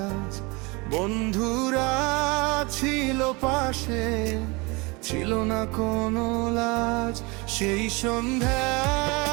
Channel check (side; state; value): left; quieter; 26.5 dB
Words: বন্ধুরা ছিল পাশে, ছিল না কোনো লাজ। সেই